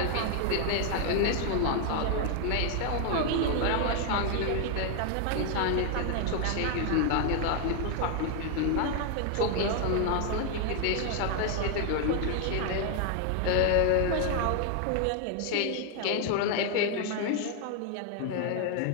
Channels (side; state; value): both; different; correlation 0.00